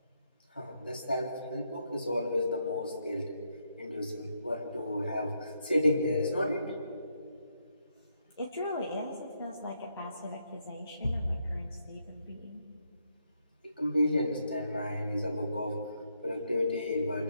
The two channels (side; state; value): both; inverted; correlation -0.78